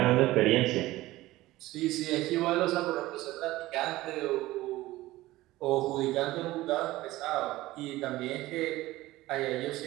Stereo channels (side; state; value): left; quieter; 17.5 dB